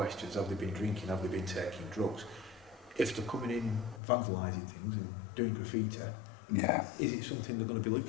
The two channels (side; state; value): right; drops out; at 4.0 s